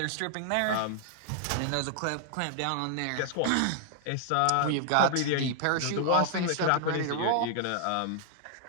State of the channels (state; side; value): different; both; correlation 0.00